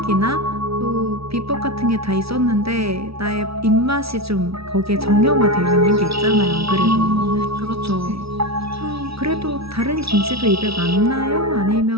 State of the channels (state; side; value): late; left; 0.76 ms